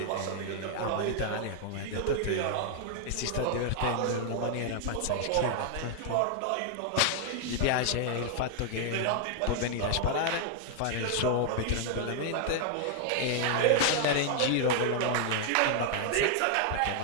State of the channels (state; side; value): different; both; correlation 0.00